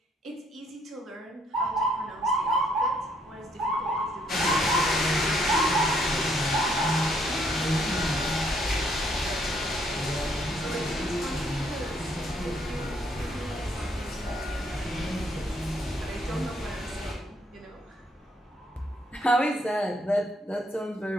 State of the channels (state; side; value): normal; both; correlation 0.69